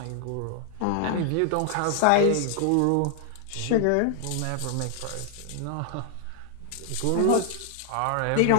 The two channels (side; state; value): both; different; correlation 0.00